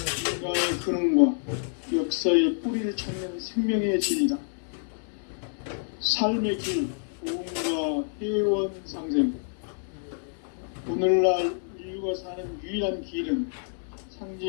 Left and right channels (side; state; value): right; silent; 59 dB below the other